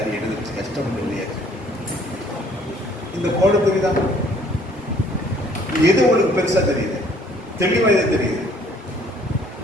எழுதுச்சு கஷ்டம் இல்லையா. இந்த கோடு தெரியுதா? எது உங்களுக்கு பெருசா தெரியுது, தெளிவா எது தெரியுது?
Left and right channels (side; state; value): both; normal; correlation 0.59